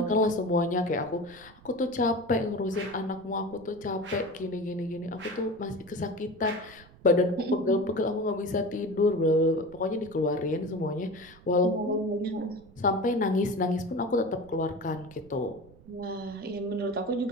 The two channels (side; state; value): right; noise; rumble, 23 dB below the sound